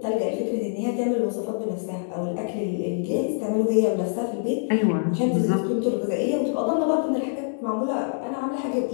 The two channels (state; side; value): silent; right; digital silence